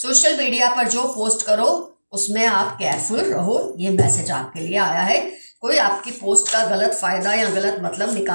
मीडिया पर जो पोस्ट करो उसमें आप केयरफुल रहो। ये मैसेज आपके लिए आया है। कोई आपकी पोस्ट का गलत फायदा या गलत मतलब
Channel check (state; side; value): inverted; both; correlation -1.00